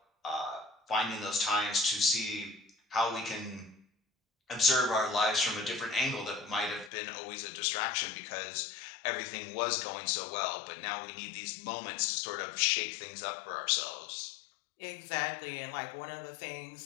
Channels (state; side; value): drops out; right; at 6.9 s